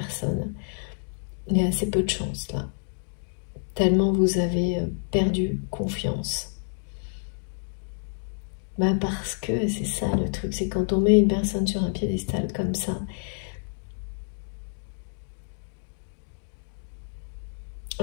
Il y a assez peu de chance là, tellement vous avez perdu confiance. Ben parce que c'est ça le truc, c'est quand on met une personne sur un piédestal comme ça,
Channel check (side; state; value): right; silent; digital silence